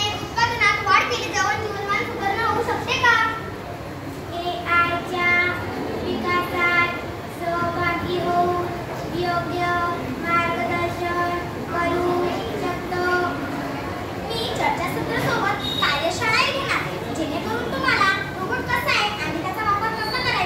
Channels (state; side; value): identical; both; correlation 1.00